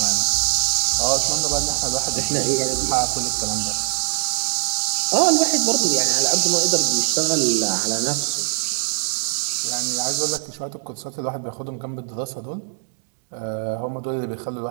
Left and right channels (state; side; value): silent; left; digital silence